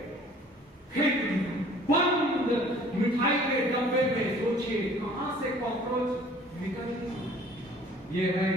फेंक दिया बंद मिठाई के डब्बे में। सोचिए कहां से कॉकरोच निकल गया। ये है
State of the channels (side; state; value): both; normal; correlation 0.52